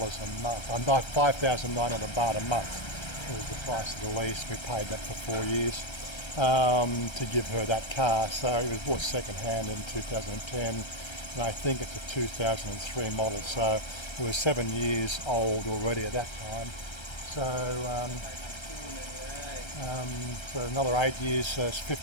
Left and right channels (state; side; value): late; right; 1.3 ms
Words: month. Not 5,900 baht a month. It was the price of the lease. We paid that for 4 years to give her that car. So it was bought second hand in 2010, and I think it's a 2003 model. So it was 7 years old already at that time. So another 8 years, it's a